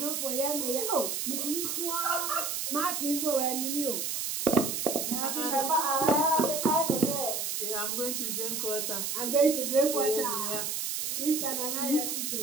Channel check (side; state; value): right; noise; hiss, 2 dB below the sound